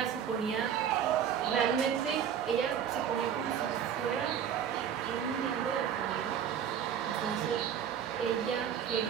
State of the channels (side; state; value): left; quieter; 8.7 dB